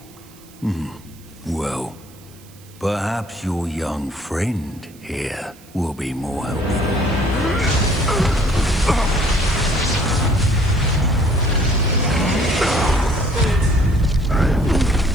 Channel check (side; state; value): right; noise; hiss, 25 dB below the sound